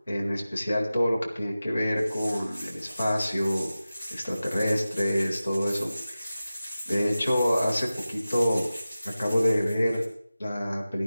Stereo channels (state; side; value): inverted; both; correlation -0.95